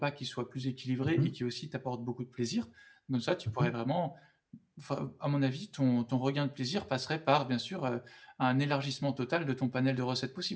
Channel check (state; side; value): identical; both; correlation 1.00